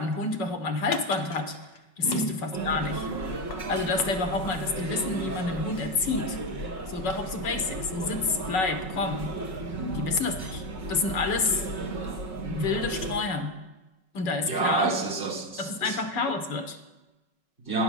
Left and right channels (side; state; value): right; late; 5.4 ms